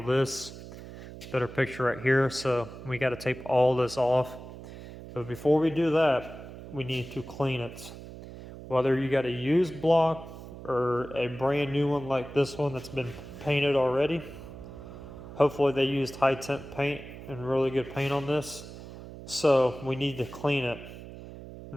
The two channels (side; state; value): right; noise; hum, 14 dB below the sound